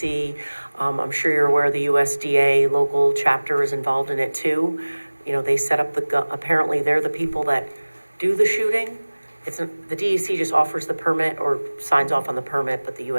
I'm sure you're aware the USDA local chapter is involved in it too. You know, they set up apparently they're the people that do the shooting. The DEC just offers the permit or signs off on the permit, but the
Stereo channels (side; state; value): both; inverted; correlation -1.00